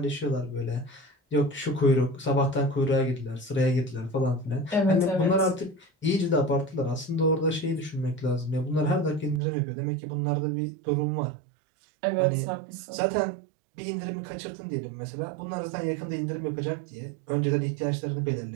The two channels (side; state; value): left; drops out; at 9.4 s